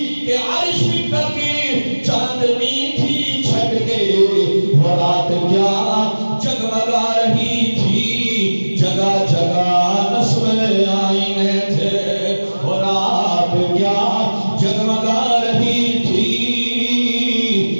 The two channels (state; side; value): inverted; both; correlation -1.00